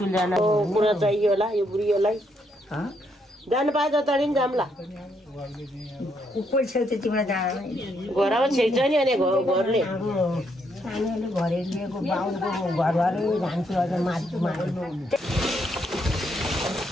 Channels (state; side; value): normal; both; correlation 0.75